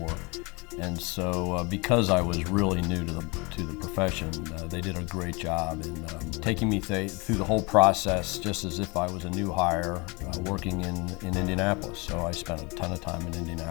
And so because I was really new to the profession, they did a great job in taking me through the whole process just as if I was a new hire working in Indianapolis. So I spent a ton of time in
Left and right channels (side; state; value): right; quieter; 28.0 dB